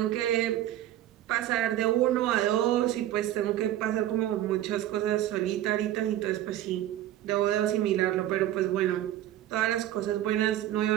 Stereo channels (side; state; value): left; quieter; 13.0 dB